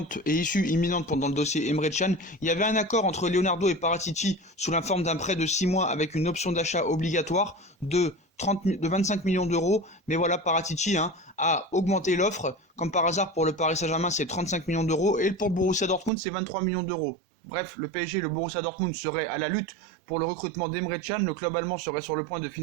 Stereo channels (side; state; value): left; drops out; at 16.1 s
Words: et issue imminente pendant le dossier Emre Can. Il y avait un accord entre Leonardo et Paratici sous la forme d'un prêt de 6 mois avec une option d'achat obligatoire de 25 millions d'euros. Mais voilà, Paratici a augmenté l'offre. Comme par hasard, pour le Paris Saint-Germain, c'est 35 millions d'euros. Et pour Borussia Dortmund, c'est 23 millions d'euros. Bref, le PSG et le Borussia Dortmund seraient à la lutte pour le recrutement d'Emre Can. Le club allemand serait sur le point de